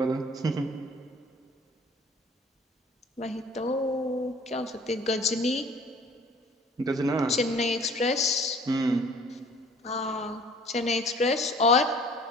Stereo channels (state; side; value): normal; both; correlation 0.50